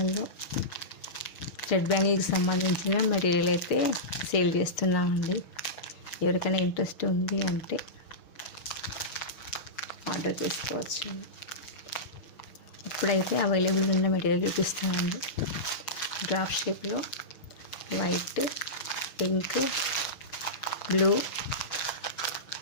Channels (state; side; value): late; right; 6.2 ms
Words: థ్రెడ్ బ్యాంగిల్కి సంబంధించిన మెటీరియల్ అయితే సేల్ చేస్తున్నామండి. ఎవరికైనా ఇంట్రెస్ట్ ఉంది అంటే ఆర్డర్ చేసుకోవచ్చు. ఇప్పుడైతే అవైలబుల్ ఉన్న మెటీరియల్ చూపిస్తానండి. డ్రాప్ షేప్లో white, pink, blue,